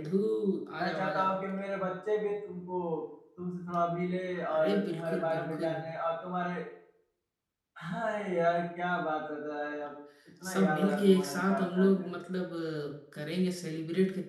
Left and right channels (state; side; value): identical; both; correlation 1.00